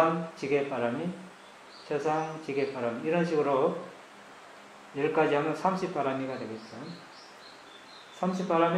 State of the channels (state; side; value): identical; both; correlation 1.00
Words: 지계바람이 최상 지계바람 이런 식으로 10가지 하면 30바람이가 되겠죠.